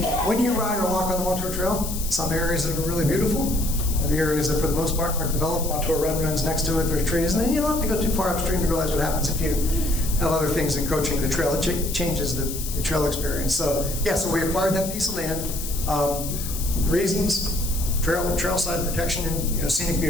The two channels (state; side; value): noise; left; hiss, 7 dB below the sound